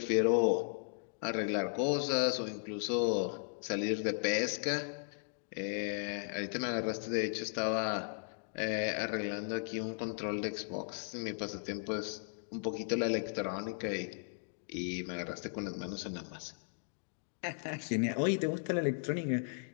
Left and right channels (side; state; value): right; silent; digital silence